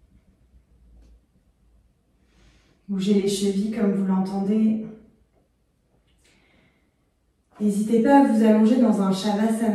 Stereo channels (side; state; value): both; identical; correlation 1.00